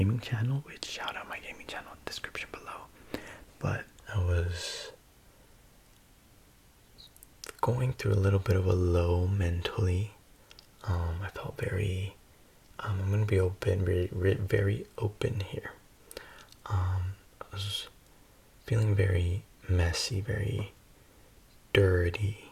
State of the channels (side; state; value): both; identical; correlation 1.00